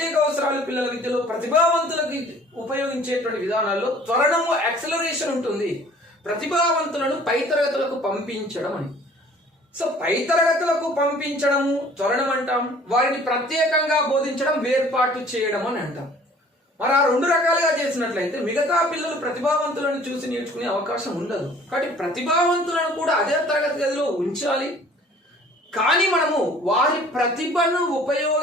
అవసరాలు పిల్లల విద్యలో ప్రతిభావంతులకు ఉపయోగించేటువంటి విధానాల్లో త్వరణము యాక్సలరేషన్ ఉంటుంది. ప్రతిభావంతులను పై తరగతులకు పంపించడం అని. సో పై తరగతులకు పంపించడము త్వరణం అంటాం. వారిని ప్రత్యేకంగా బోధించడం వేర్పాటు చేయడం అని అంటాం. మరి ఆ రెండు రకాలుగా చేసినట్లయితే మిగతా పిల్లలు ప్రతిభావంతులను చూసి నేర్చుకునే అవకాశం ఉండదు. కాబట్టి ప్రతిభావంతులను కూడా అదే తరగతి గదిలో ఉంచాలి. కానీ మనము వారి ప్రతిభను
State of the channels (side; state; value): both; normal; correlation 0.52